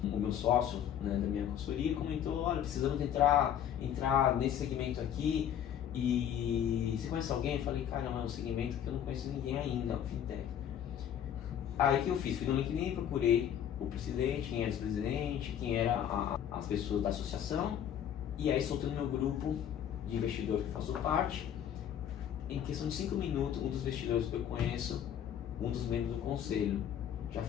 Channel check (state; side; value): quieter; right; 9.8 dB